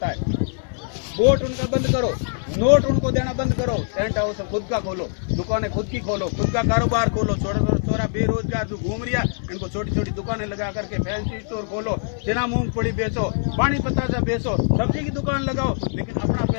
है। वोट उनका बंद करो, नोट उनको देना बंद करो, टेंट हाउस खुद का खोलो, दुकानें खुद की खोलो, खुद का कारोबार खोलो। छोरा बेरोजगार जो घूम रहा इनको छोटी छोटी दुकानें लगा करके फैंसी स्टोर खोलो, चना मूंगफली बेचो, पानी पतासा बेचो, सब्जी की दुकान लगाओ, लेकिन अपना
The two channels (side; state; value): right; silent; digital silence